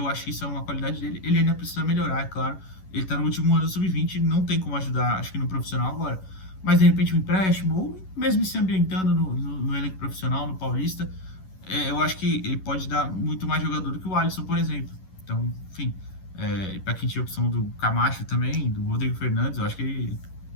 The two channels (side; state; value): right; late; 11 ms